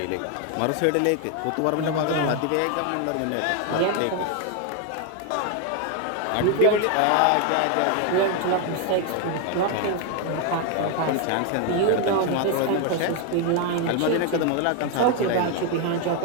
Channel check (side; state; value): both; different; correlation 0.01